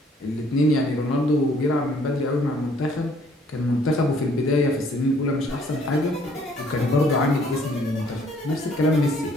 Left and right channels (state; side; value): normal; both; correlation 0.62